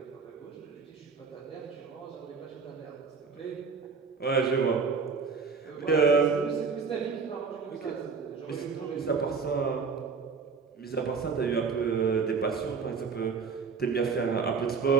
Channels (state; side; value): quieter; left; 5.3 dB